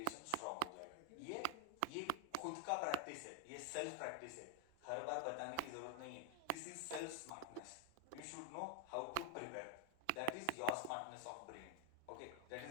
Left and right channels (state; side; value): different; both; correlation 0.01